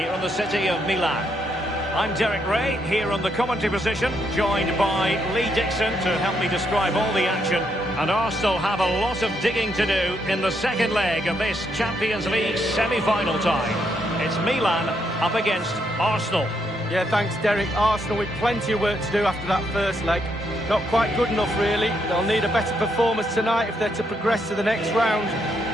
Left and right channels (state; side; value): normal; both; correlation 0.77